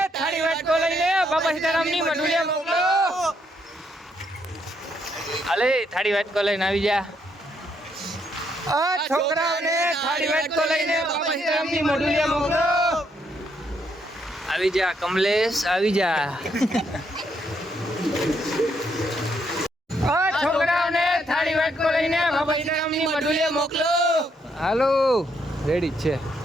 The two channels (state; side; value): normal; both; correlation 0.74